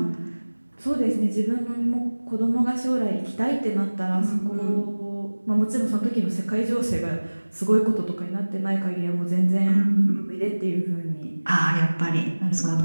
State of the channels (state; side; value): inverted; both; correlation -1.00